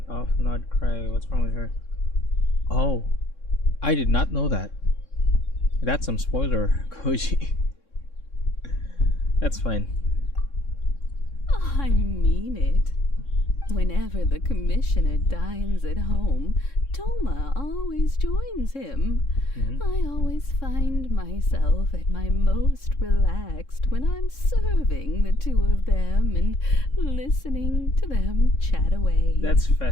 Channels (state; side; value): late; right; 3.6 ms